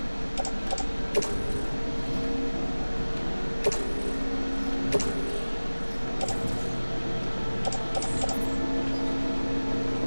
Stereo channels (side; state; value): both; inverted; correlation -1.00